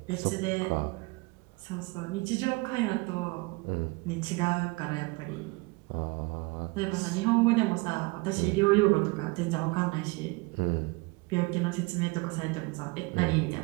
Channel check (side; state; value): left; quieter; 25.8 dB